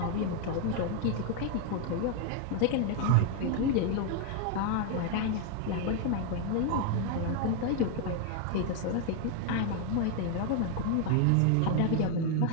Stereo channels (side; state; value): both; different; correlation 0.00